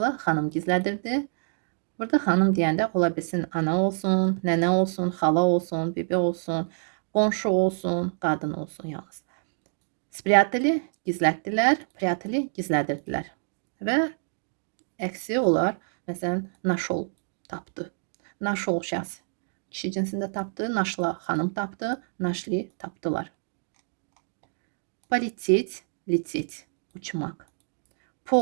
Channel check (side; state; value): left; silent; digital silence